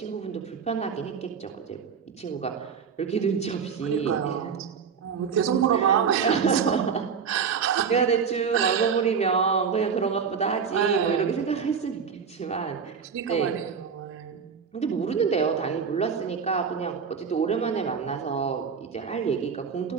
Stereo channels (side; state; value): left; quieter; 6.4 dB